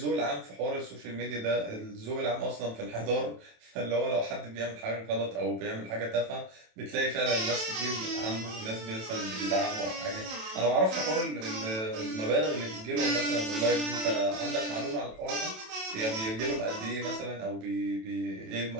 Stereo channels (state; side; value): late; left; 27 ms